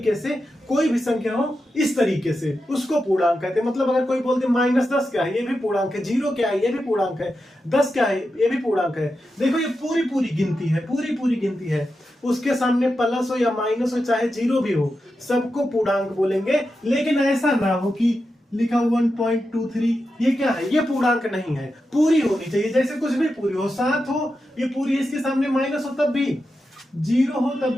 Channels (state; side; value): normal; both; correlation 0.89